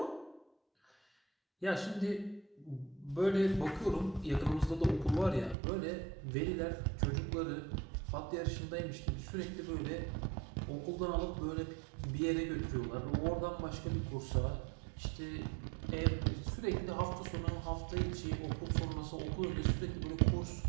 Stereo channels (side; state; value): left; drops out; at 5.6 s